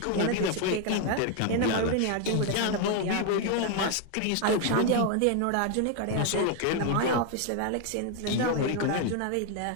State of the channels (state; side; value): different; both; correlation 0.01